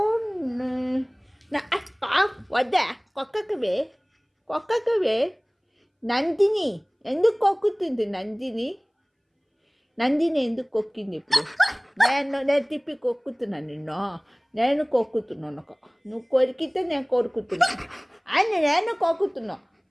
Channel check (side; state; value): both; identical; correlation 1.00